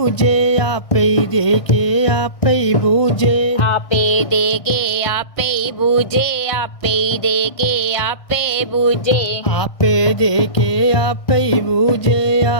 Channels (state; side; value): late; right; 1.6 ms